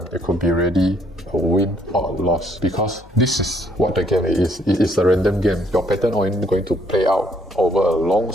It could be really a win or a loss because this is what the game is. It is a random game. Your pattern only going to play out over a long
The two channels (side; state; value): left; noise; hum, 24 dB below the sound